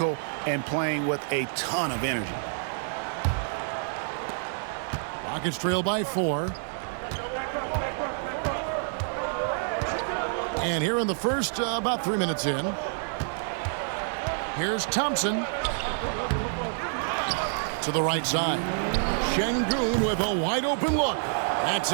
and playing with a ton of energy. Rockets trail by 4. And here in the first, about 3 minutes in, here's Thompson to the right side. Şengün with a wide open look. That's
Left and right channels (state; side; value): silent; left; 59 dB below the other